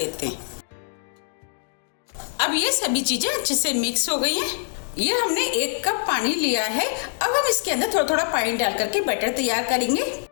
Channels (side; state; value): right; silent; digital silence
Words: हैं। अब ये सभी चीजें अच्छे से मिक्स हो गई हैं। ये हमने 1 कप पानी लिया है। अब हम इसके अंदर थोड़ा थोड़ा पानी डाल करके बैटर तैयार करेंगे।